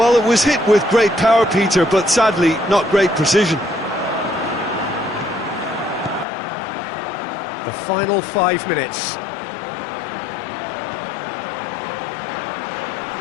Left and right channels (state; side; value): drops out; right; at 6.2 s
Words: it was hit with great power, Peter, but sadly, not great precision. The final 5 minutes.